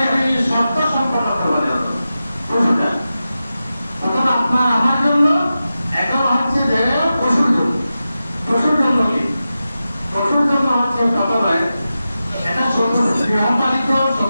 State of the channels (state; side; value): inverted; both; correlation -0.92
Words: শর্ত সম্পন্ন করতে হবে পশুটা। তখন আপনার আমার জন্য এখন হচ্ছে যে পশুর জন্য। পশুর জন্য কি? পশুর জন্য হচ্ছে প্রথমে এটা গৃহপালিত